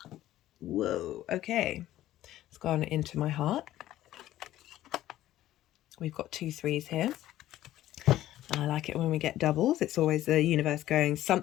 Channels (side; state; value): right; quieter; 14.0 dB